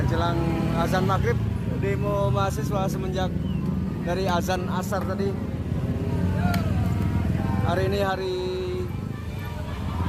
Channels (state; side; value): identical; both; correlation 1.00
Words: jelang azan maghrib, demo mahasiswa semenjak dari azan asar tadi. Hari ini hari